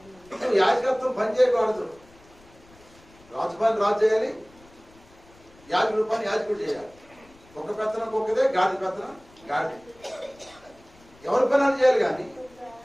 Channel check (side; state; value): left; noise; rumble, 27 dB below the sound